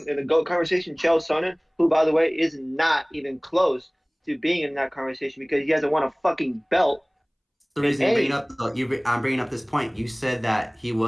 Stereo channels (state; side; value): identical; both; correlation 1.00